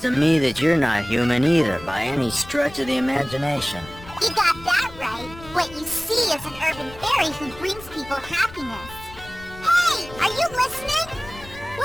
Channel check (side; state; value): left; noise; rumble, 18 dB below the sound